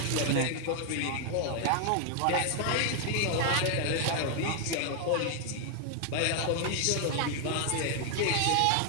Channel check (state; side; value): different; both; correlation 0.00